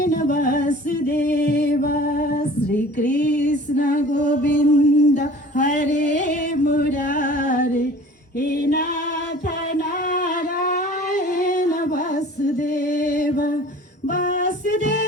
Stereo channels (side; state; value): both; normal; correlation 0.45